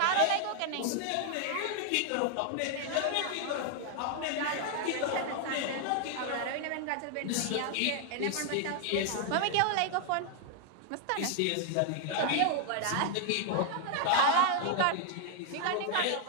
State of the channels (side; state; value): both; different; correlation 0.00